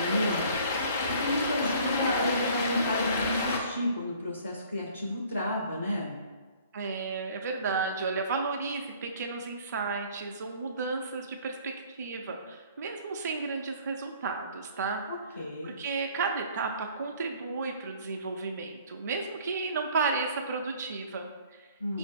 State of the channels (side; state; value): both; inverted; correlation -0.54